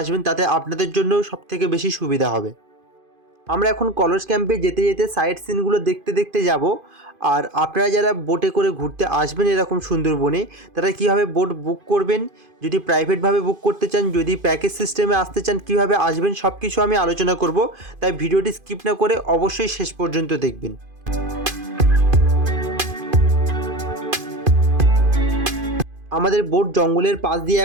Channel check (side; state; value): left; late; 2.5 ms